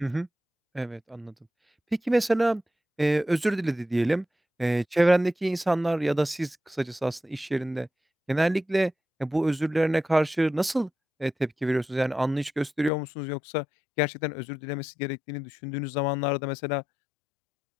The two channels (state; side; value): drops out; right; at 12.9 s